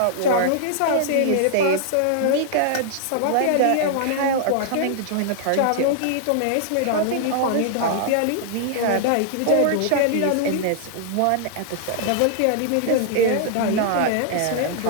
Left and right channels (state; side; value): different; both; correlation -0.01